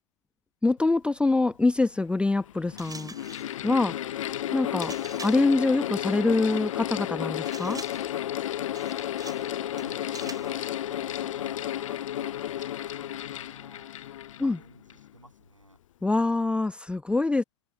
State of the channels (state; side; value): quieter; right; 3.8 dB